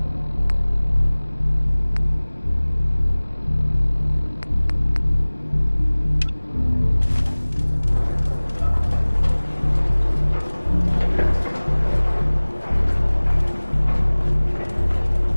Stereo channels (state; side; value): inverted; both; correlation -1.00